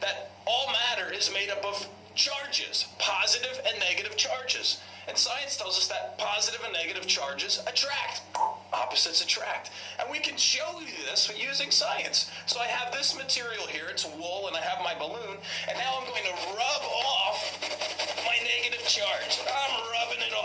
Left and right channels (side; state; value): both; identical; correlation 1.00